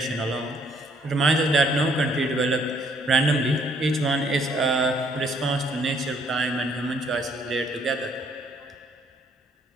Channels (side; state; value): both; normal; correlation 0.66